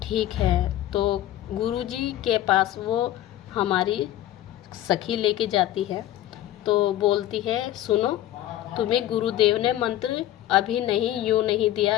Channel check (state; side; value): quieter; right; 13.3 dB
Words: है। तो गुरुजी के पास वो हमारी सखी लेके जाती है। तो बोलती है सुनो, तुम्हें गुरुदेव ने मंत्र अभी नहीं, यूँ नहीं